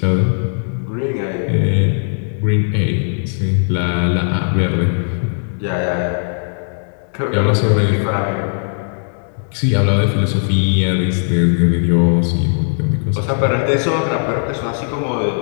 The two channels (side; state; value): right; silent; 67 dB below the other